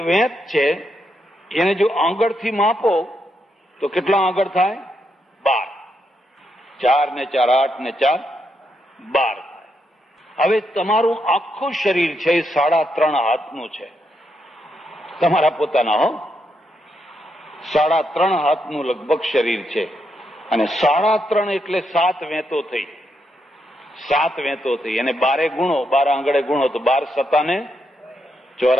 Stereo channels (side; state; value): both; normal; correlation 0.80